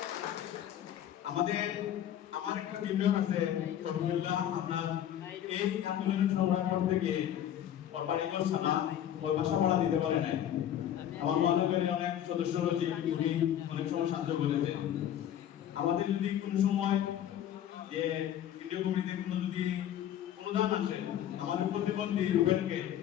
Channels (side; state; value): right; quieter; 10.8 dB